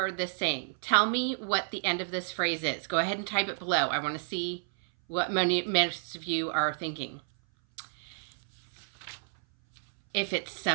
this saying? Tell me what the end of this phrase is. Go ahead and type it below. I want to see what most of you are thinking. If it's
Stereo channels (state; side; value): silent; left; 57 dB below the other